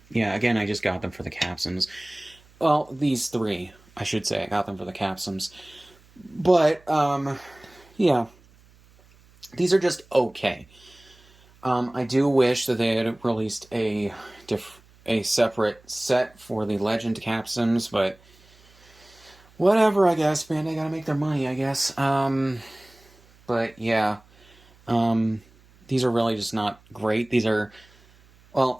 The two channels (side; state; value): right; noise; hum, 28 dB below the sound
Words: yeah, again, I just got them for the capsums. Well, these three, I should say. I got them for the capsums. But, yeah. These are just okay. I do wish that they had released a separate set for the Legend capsums, but whatever, I guess, man. They gotta make their money, I guess. But, yeah. These are really just not great. These are, well,